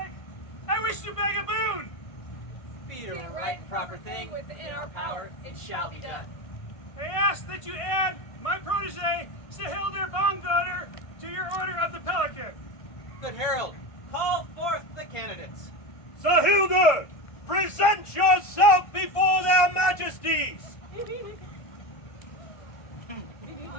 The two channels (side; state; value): right; late; 1.5 ms